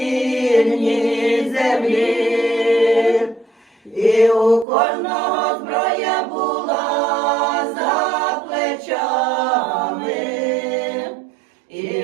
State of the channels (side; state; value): left; drops out; at 4.7 s